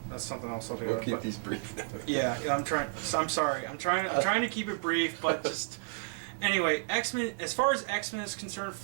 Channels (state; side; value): silent; left; digital silence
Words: That's something else altogether. We'll keep these brief now. Yeah, I'm trying. So I'm sorry. I'm trying to keep it brief, but just anyway. X-Men. As far as X-Men is concerned,